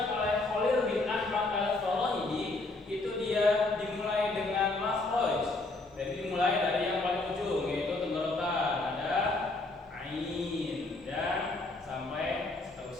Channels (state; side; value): quieter; right; 3.1 dB